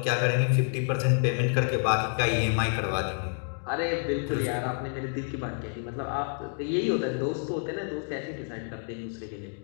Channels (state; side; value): silent; right; 57 dB below the other